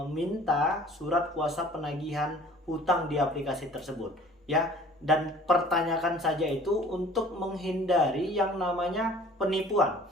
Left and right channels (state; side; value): normal; both; correlation 0.49